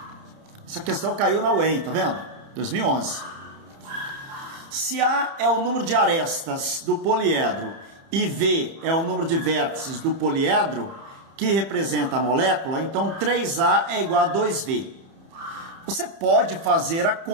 Essa questão caiu na UEM, tá vendo? 2011. Se A é o número de arestas do poliedro e V é o número de vértices do poliedro, que representa a molécula, então 3A é igual a 2V. Você pode fazer a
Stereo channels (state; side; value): late; left; 30 ms